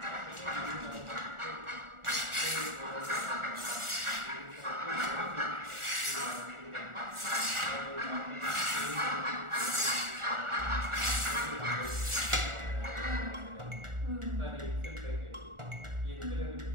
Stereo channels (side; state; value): left; late; 1.4 ms